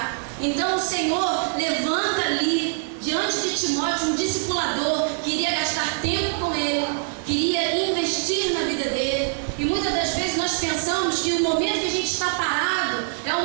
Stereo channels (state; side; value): silent; left; 63 dB below the other